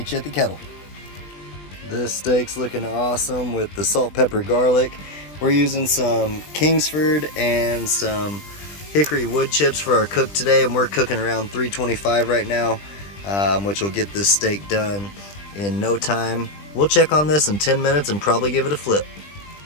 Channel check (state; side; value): late; right; 20 ms